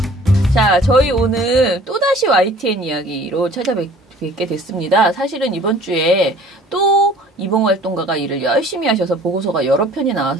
자, 저희 오늘 또다시 YTN 이야기로 찾아뵙게 됐습니다. 사실은 이번 주에 또 이봉 활동가가 일을 열심히 하셔서 보고서가 여러 편이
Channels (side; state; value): both; normal; correlation 0.51